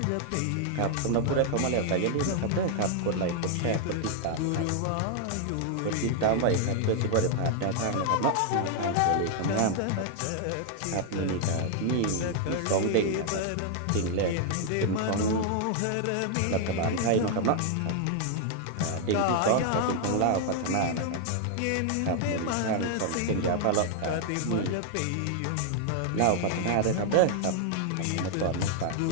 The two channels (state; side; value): different; both; correlation 0.00